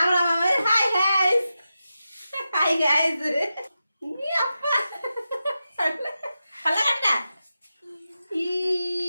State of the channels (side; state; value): both; inverted; correlation -0.91